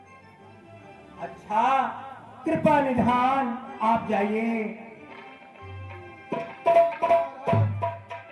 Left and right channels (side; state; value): both; identical; correlation 1.00